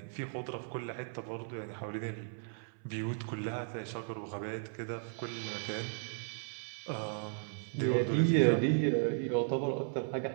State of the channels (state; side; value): silent; left; 54 dB below the other